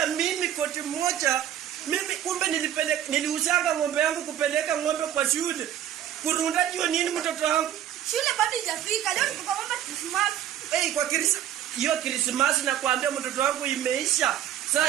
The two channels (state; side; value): quieter; left; 11.0 dB